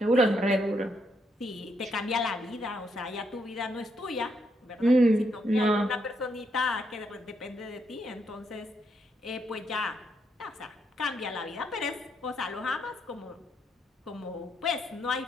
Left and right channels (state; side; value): normal; both; correlation 0.77